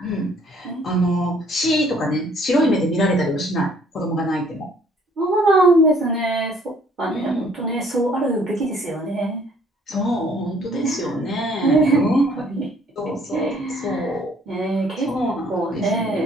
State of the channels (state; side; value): normal; both; correlation 0.60